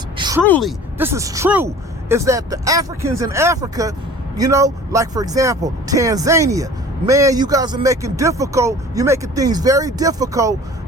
truly, this is true, is that the Africans in Africa, like, for example, Tanzania, man, you guys are making things very difficult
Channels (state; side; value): normal; both; correlation 0.44